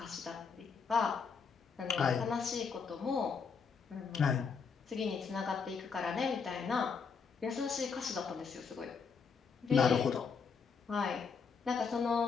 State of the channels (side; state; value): right; quieter; 5.7 dB